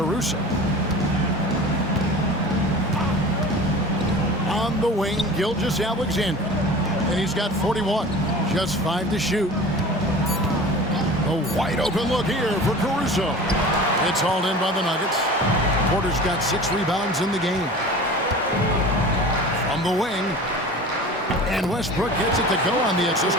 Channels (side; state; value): both; normal; correlation 0.38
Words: On the wing, Gilgeous-Alexander. And he's got 41. Just 5 to shoot. A wide open look here for Caruso. It's hauled in by the Nuggets. Porter's got 6 rebounds in the game. From the wing. And Westbrook gets it to go on the assist